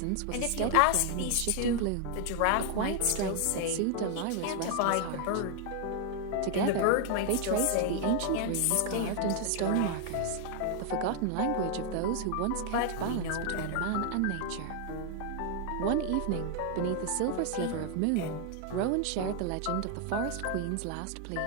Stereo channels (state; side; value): different; both; correlation 0.00